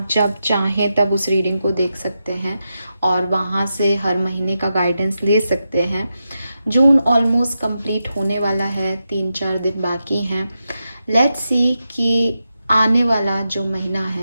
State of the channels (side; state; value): both; inverted; correlation -0.88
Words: जब चाहें तब उस रीडिंग को देख सकते हैं और वहाँ से हर महीने का गाइडेंस ले सकते हैं। जून ऑलमोस्ट कंप्लीट होने वाला है, 3-4 दिन बाकी हैं। लेट्स सी कि आने वाला जो महीना